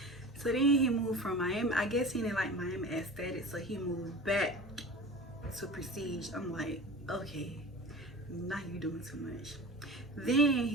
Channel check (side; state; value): both; normal; correlation 0.35